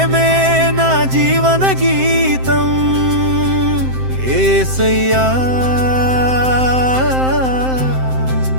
నా జీవన గీతం యేసయ్యా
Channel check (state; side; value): late; left; 7.7 ms